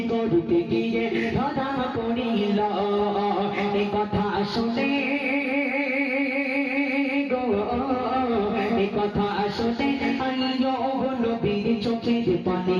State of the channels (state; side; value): identical; both; correlation 1.00